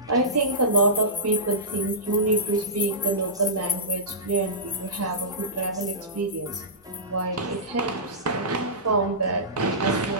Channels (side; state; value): both; normal; correlation -0.18